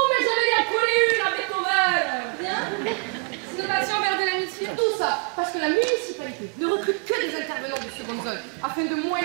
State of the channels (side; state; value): left; quieter; 37.2 dB